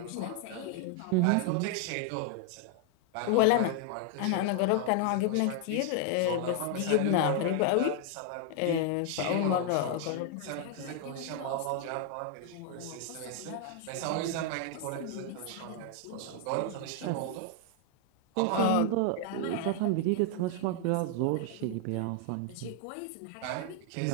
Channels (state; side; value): different; both; correlation 0.00